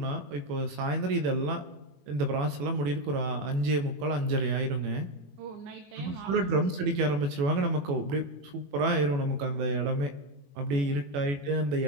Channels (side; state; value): left; late; 21 ms